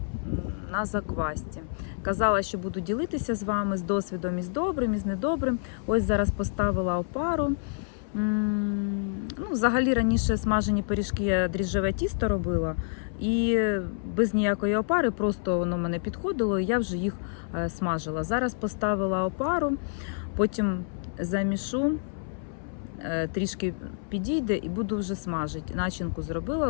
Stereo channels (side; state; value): right; silent; 59 dB below the other